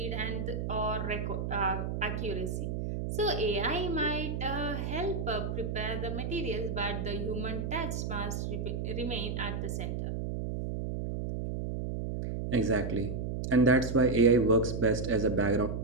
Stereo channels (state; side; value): noise; right; hum, 3 dB below the sound